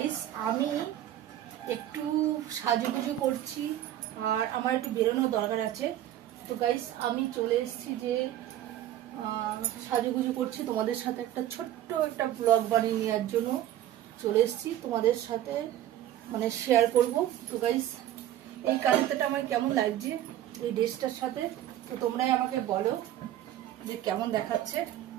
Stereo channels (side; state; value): left; quieter; 12.5 dB